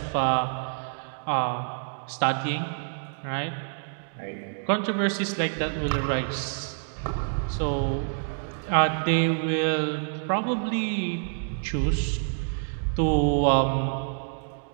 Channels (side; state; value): left; silent; digital silence